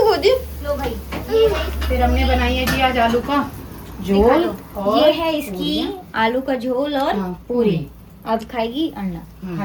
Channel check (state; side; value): identical; both; correlation 1.00